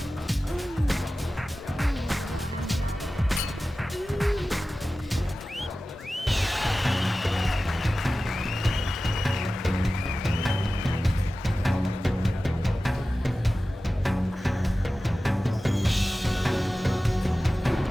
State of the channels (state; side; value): normal; both; correlation 0.95